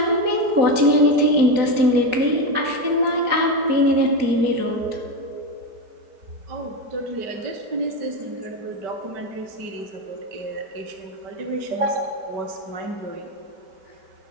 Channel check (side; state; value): left; late; 4.1 ms